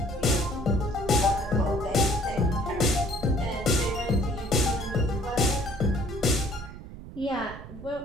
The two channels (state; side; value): noise; right; rumble, 14 dB below the sound